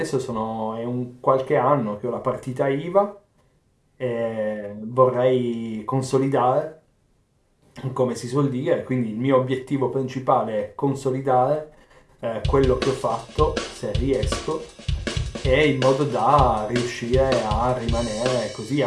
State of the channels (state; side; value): identical; both; correlation 1.00